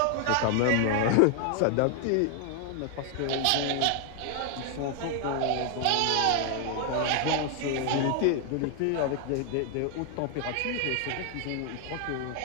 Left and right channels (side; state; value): both; different; correlation 0.00